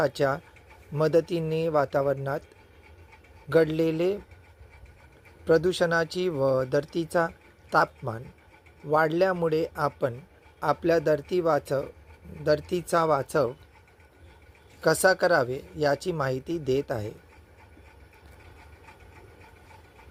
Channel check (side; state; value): both; identical; correlation 1.00